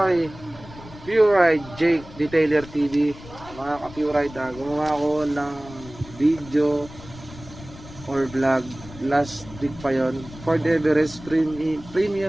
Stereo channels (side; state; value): left; noise; rumble, 17 dB below the sound